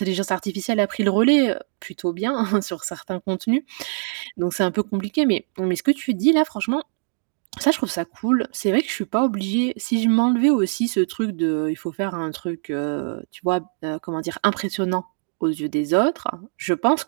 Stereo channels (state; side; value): silent; left; digital silence